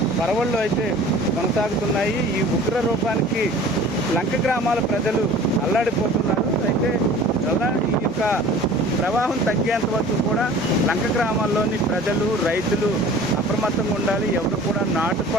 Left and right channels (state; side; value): normal; both; correlation 0.44